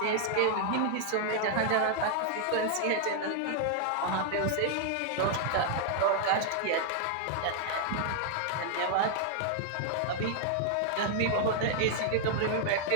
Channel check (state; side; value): different; both; correlation 0.00